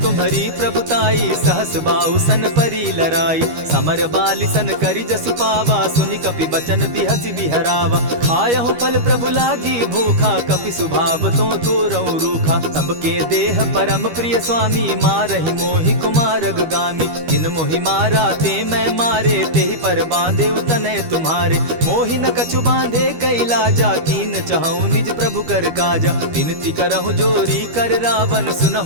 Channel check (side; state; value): left; late; 13 ms